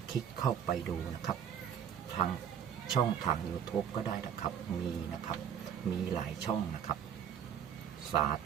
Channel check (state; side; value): quieter; left; 8.5 dB